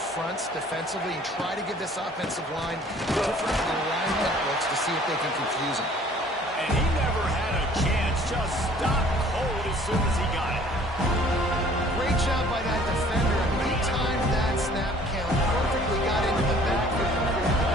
defensively and try to give this offensive line different alignment looks to see if they can confuse him. And he never had a chance. Just stopped cold as soon as he got it. Great job by that defender. I mean, he timed that snap count perfectly, got into the backfield and created a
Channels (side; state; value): both; normal; correlation 0.54